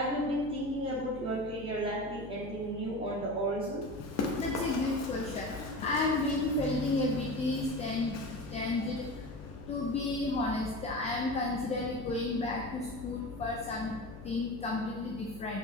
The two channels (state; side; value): noise; left; hum, 14 dB below the sound